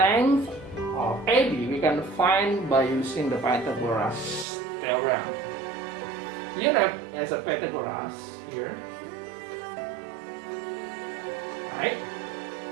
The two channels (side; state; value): left; drops out; at 4.5 s